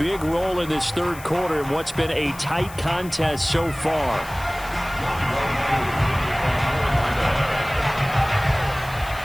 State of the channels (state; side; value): noise; left; hiss, 18 dB below the sound